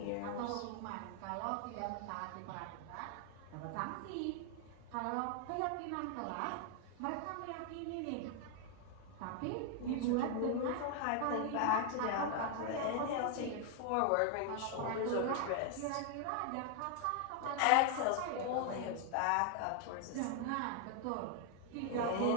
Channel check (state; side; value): different; both; correlation 0.00